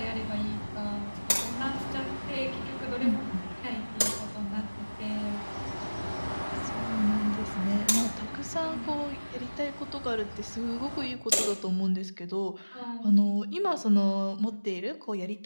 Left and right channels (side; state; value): both; inverted; correlation -1.00